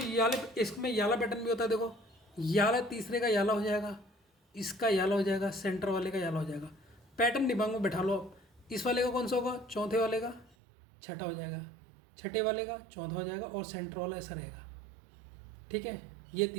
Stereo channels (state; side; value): drops out; left; at 10.6 s